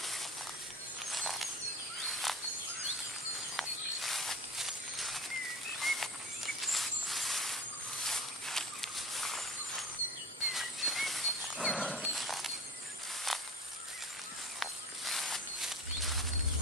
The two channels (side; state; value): both; normal; correlation 0.37